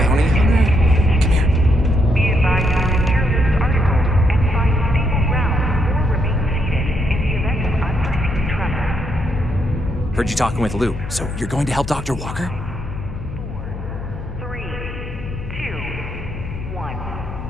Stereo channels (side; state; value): left; noise; hum, 9 dB below the sound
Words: hunter? Come here. Be advised to secure this article and find stable ground or remain seated in the event of unforeseen tremor. Heard you talking with Lou, so you're going to help Dr. Walker? 4, 3, 2, 1.